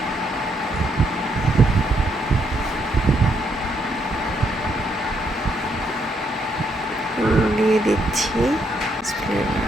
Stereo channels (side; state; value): both; normal; correlation 0.75